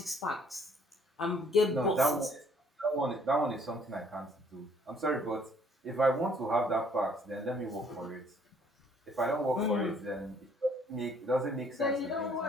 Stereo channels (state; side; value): normal; both; correlation 0.62